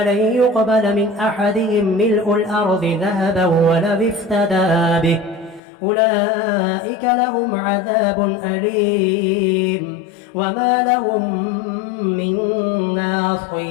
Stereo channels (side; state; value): right; drops out; at 5.6 s